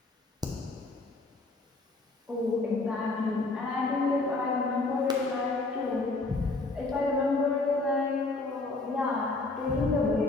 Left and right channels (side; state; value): right; quieter; 3.4 dB